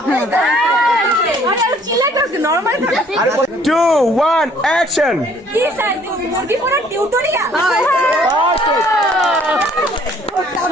আরে চিলা করতে নরমাল থাকে। 2 1 অ্যাকশন। কি স্যার মুরগি পোড়া টিউটোরিয়াল।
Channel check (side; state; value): both; normal; correlation 0.59